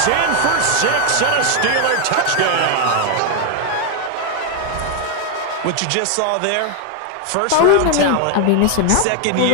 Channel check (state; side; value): different; both; correlation 0.01